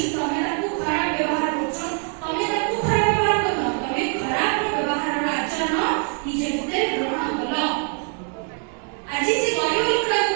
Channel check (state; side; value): quieter; left; 39.8 dB